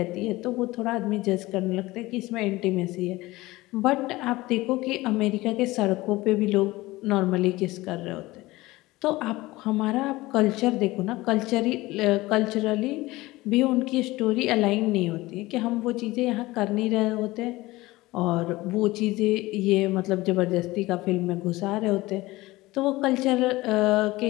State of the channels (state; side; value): quieter; right; 19.5 dB